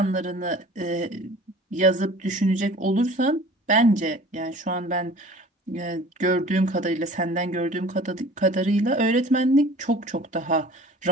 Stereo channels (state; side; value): normal; both; correlation 0.45